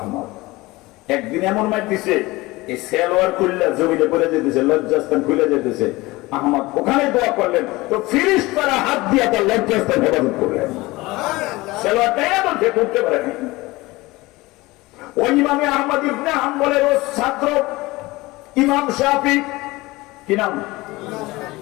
একদিন এমন মার দিছে, এই সেলোয়ার খুললে জমিনে পড়ে যেতেছে, লজ্জাস্থান খুলে যেতেছে। আহমদ ওখানে দোয়া করলেন, তো ফিরিস্তারা হাত দিয়ে তার লজ্জাস্থান হেফাজত করলেন। সেলোয়ারটাই এমন সে করতে পারেনি। ওই ইমামে আহমদ ইবনে হাম্বলের ছাত্র ইমাম শাফি, কি নাম?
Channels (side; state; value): right; quieter; 20.9 dB